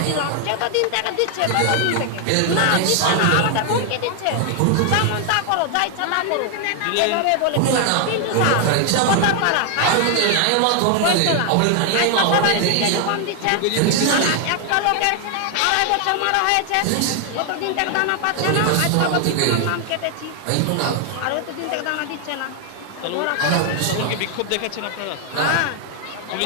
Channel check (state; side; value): different; both; correlation 0.00